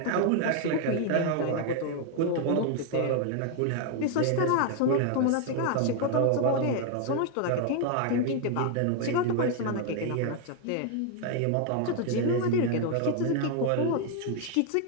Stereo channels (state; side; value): different; both; correlation 0.00